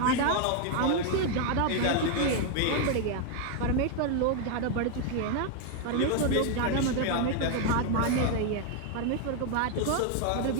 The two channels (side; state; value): both; different; correlation 0.01